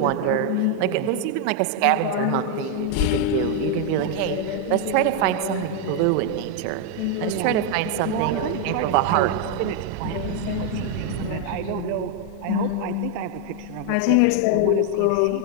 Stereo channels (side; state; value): both; different; correlation 0.01